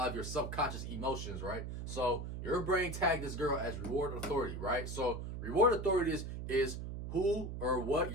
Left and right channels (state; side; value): noise; right; hum, 6 dB below the sound